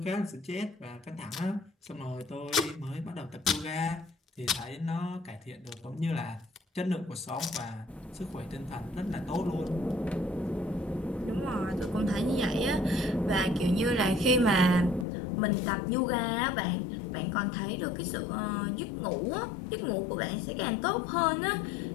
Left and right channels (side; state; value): right; drops out; at 15.1 s